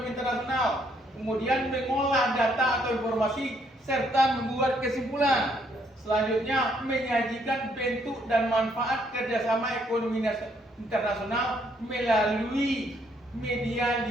internasional, kemudian mengolah data atau informasi, serta membuat kesimpulan. Selanjutnya, menyajikan bentuk dan manfaat kerjasama ekonomi internasional melalui media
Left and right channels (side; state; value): both; normal; correlation 0.70